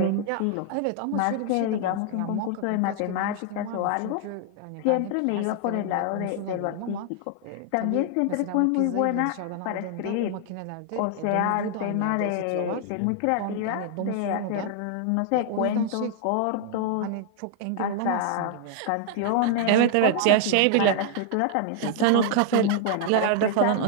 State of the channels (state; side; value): different; both; correlation 0.00